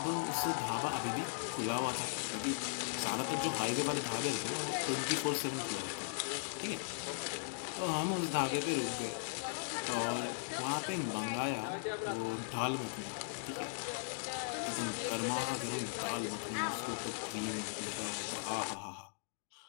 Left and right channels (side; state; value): right; silent; digital silence